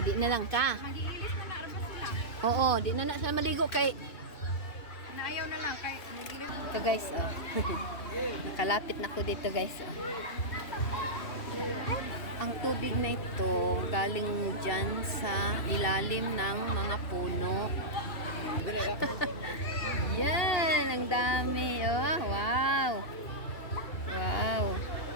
na lang ka. Mag-iilis na narabas sila. Oo, di na na siya maligo kay Naayaw na lang kay mag-iilis. ito guys, oh. Nakalapit na ko dito guys, oh. Ang tubig na ito galing dyan sa ilalim ng mga puno. Yan, ang dami. Oh, wow. Wow.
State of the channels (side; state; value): right; late; 2.7 ms